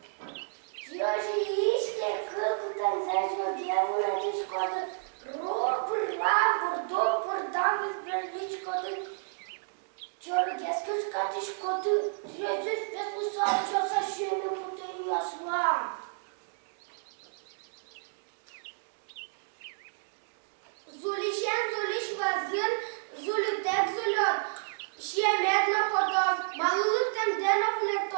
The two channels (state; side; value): silent; left; digital silence